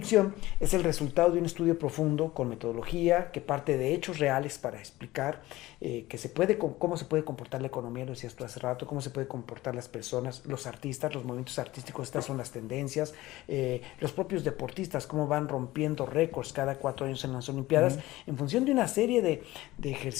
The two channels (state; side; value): quieter; right; 17.7 dB